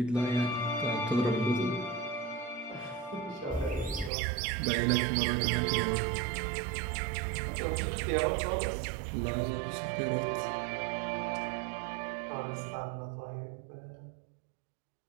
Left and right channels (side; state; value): left; drops out; at 4.1 s